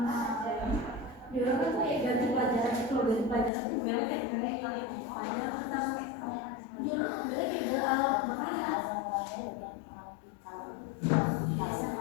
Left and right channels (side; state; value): right; drops out; at 3.5 s